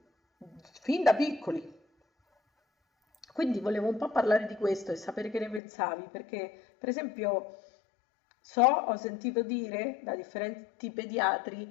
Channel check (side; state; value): right; drops out; at 5.6 s